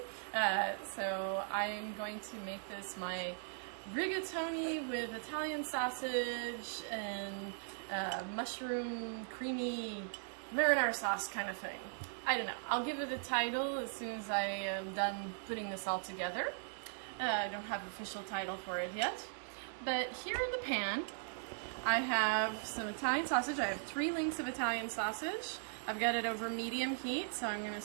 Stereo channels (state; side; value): silent; left; 52 dB below the other